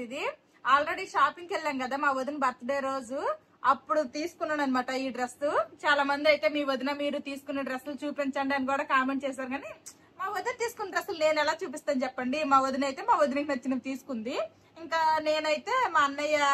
ఇది ఆల్రెడీ షాపింగ్ కి వెళ్ళాం కదా మా వదిన బర్త్డే రోజు, అప్పుడు తీసుకున్నాను అనమాట ఈ డ్రెస్. చాలా మంది అయితే మీ వదిన మీరు తీసుకున్న డ్రెస్సులు చూపించండి అని కూడా కామెంట్ చేశారు. కానీ మా వదిన తీసుకున్న డ్రెస్సులు నేను ఎలా చూపిస్తాను చెప్పండి. మా వదిన అయితే మా వదినకి నచ్చినవి తీసుకుంది. ఇంకా నేనైతే మా అన్నయ్య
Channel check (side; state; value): both; identical; correlation 1.00